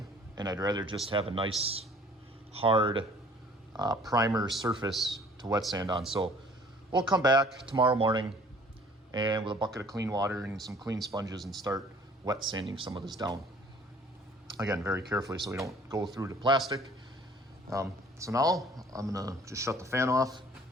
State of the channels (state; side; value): normal; both; correlation 0.53